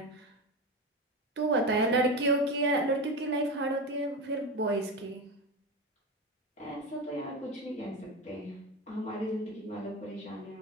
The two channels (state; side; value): normal; both; correlation 0.20